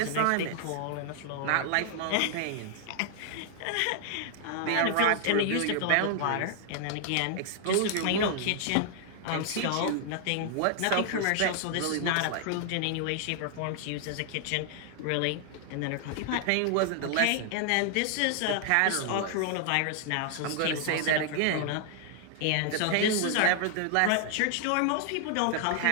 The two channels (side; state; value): both; different; correlation 0.00